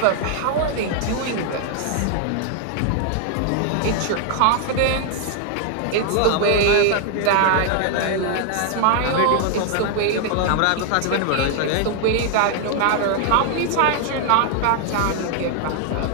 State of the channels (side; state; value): both; different; correlation 0.00